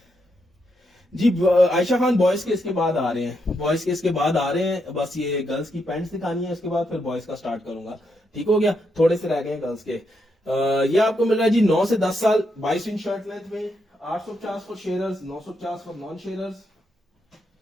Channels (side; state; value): both; normal; correlation 0.80